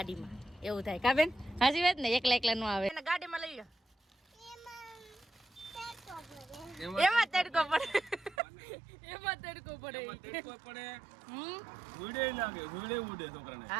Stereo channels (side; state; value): left; drops out; at 8.3 s